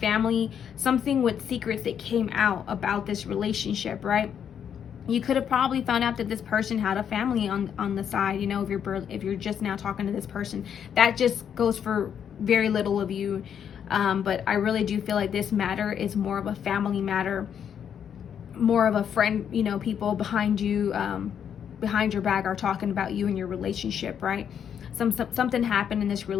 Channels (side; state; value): right; quieter; 8.4 dB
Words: something with secrets that came out about this relationship, right? You could have probably found out that this person had a family on the side, you know, if you're just now talking to this person. That just goes for very little of you. But I really do feel like this matter is more of a family matter, more of a friend, you know, people behind you, behind your back are talking about you and your relationship, right? Something happened in this